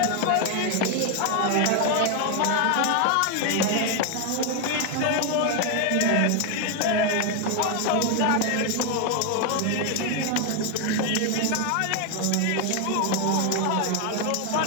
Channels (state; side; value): different; both; correlation 0.01